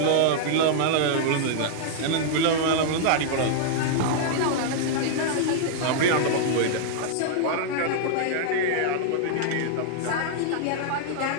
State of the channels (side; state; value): both; different; correlation -0.01